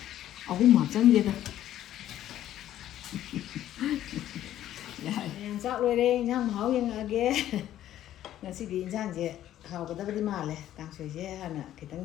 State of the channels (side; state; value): right; quieter; 12.4 dB